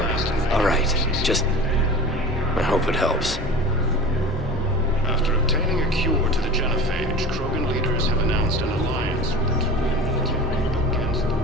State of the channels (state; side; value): normal; both; correlation 0.35